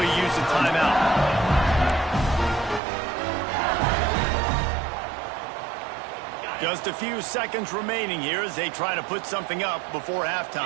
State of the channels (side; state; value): left; drops out; at 2.8 s